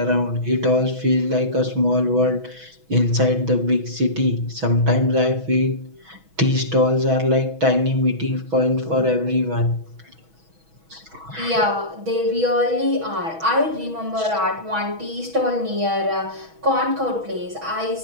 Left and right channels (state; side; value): late; left; 6.2 ms